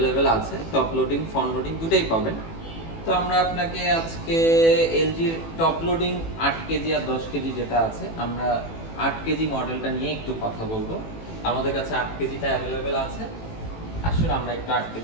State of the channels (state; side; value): late; right; 18 ms